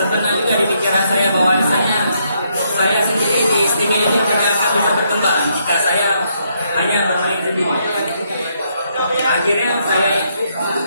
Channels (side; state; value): both; inverted; correlation -0.74